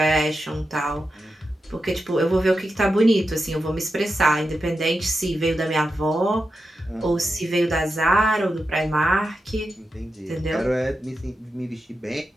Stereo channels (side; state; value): both; normal; correlation 0.89